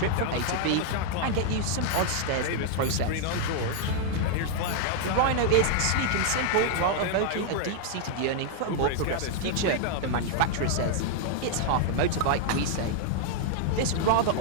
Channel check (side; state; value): both; different; correlation 0.00